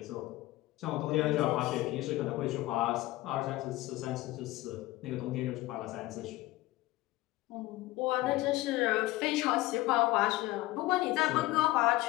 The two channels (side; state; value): right; quieter; 18.2 dB